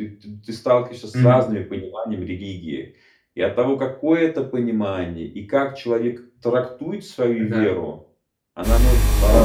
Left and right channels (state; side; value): identical; both; correlation 1.00